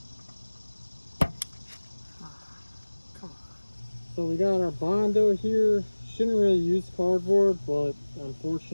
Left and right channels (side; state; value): both; inverted; correlation -1.00